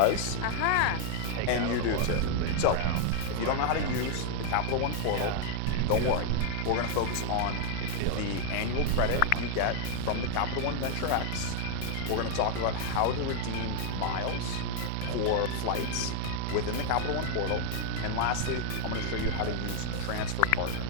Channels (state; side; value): different; both; correlation 0.00